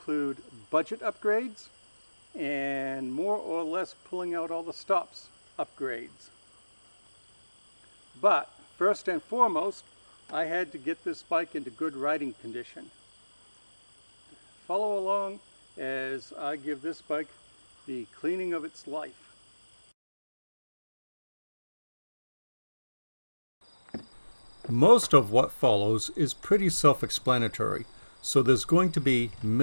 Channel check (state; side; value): inverted; both; correlation -1.00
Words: budget upgrades and more or less pulling out all the stops upgrades. But first and foremost, I had to get this bike into good riding condition. Follow along as I give this bike the cleaning of its life. Most of what follows is pretty self-explanatory, so there's going to be